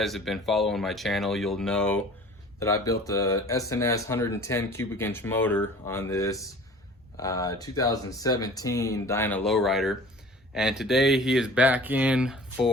have been following my channel, you'll know that I built a SNS 110 cubic inch motor on this 2017 Dyna Lowrider, and today he is back in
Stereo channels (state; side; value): normal; both; correlation 0.45